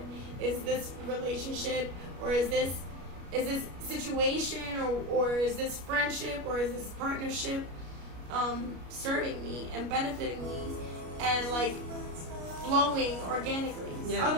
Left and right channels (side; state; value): left; late; 33 ms